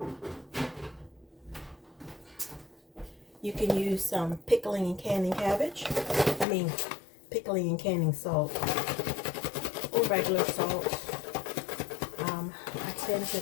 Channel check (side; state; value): right; drops out; at 6.5 s